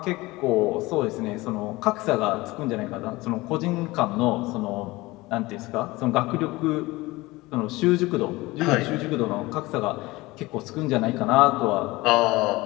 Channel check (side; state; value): right; quieter; 20.8 dB